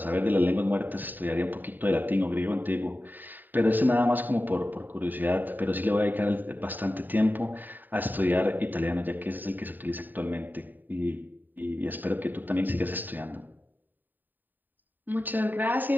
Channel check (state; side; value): late; left; 0.090 ms